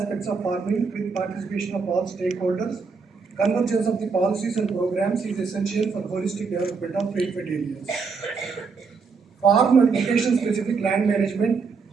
of farming with participation of all stakeholders. Convergence of the policies and programs is essential for holistic development of rainfed areas. Farm and location-specific land management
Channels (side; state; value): left; quieter; 5.0 dB